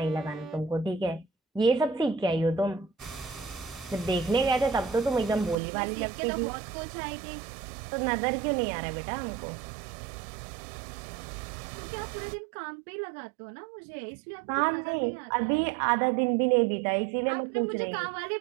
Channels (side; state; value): left; drops out; at 5.6 s